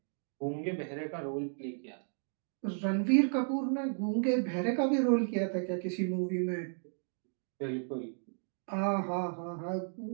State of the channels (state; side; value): silent; left; digital silence